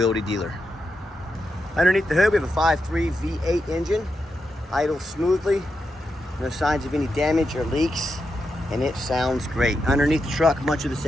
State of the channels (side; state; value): both; normal; correlation 0.86